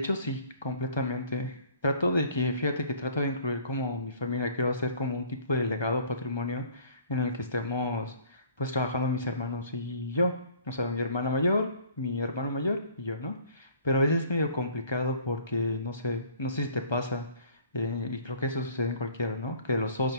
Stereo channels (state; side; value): inverted; both; correlation -0.53